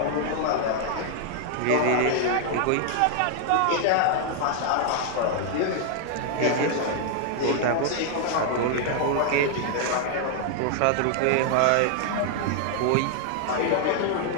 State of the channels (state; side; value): different; both; correlation 0.00